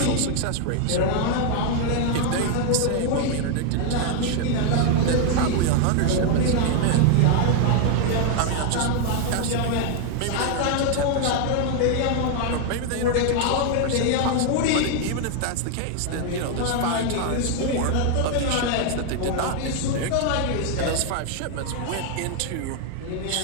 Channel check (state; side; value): different; both; correlation 0.00